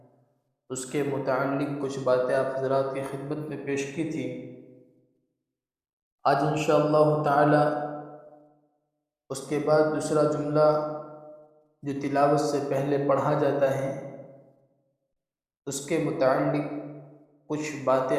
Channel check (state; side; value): identical; both; correlation 1.00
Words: اس کے متعلق کچھ باتیں آپ حضرات کی خدمت میں پیش کی تھی۔ آج انشاءاللہ تعالی اس کے بعد دوسرا جملہ جو تلاوت سے پہلے پڑھا جاتا ہے، اس کے متعلق کچھ